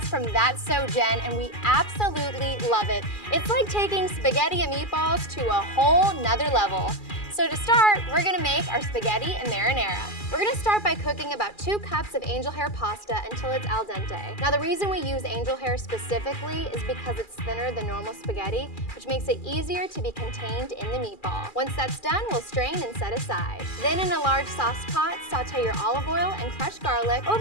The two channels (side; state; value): right; late; 2.4 ms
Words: from That's So Jen, and we absolutely love it. It's like taking spaghetti and meatballs to a whole nother level. So to start, we're gonna make our spaghetti and marinara. We're gonna start by cooking about 2 cups of angel hair pasta until it's al dente. Now the reason we use angel hair specifically is because it's thinner than normal spaghetti, which makes it easier to be contained in the meatball. Once that's done, we'll strain and set aside. Then in a large sauce pot, saute your olive oil and crushed garlic